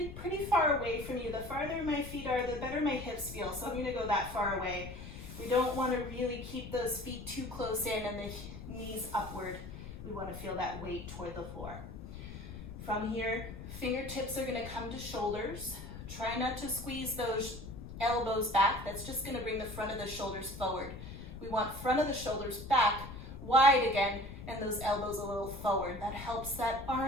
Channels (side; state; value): left; noise; rumble, 11 dB below the sound